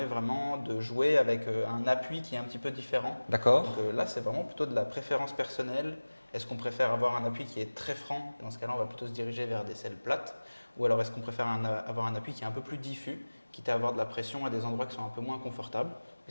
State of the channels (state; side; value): inverted; both; correlation -1.00